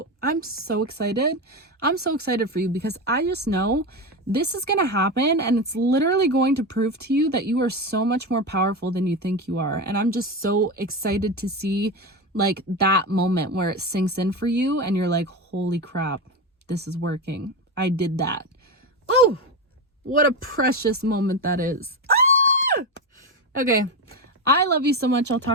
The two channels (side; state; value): both; normal; correlation 0.17